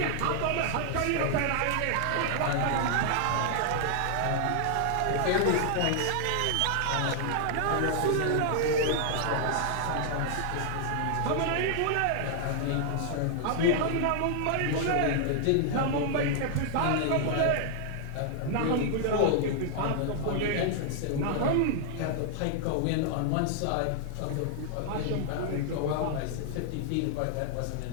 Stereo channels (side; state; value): both; different; correlation 0.00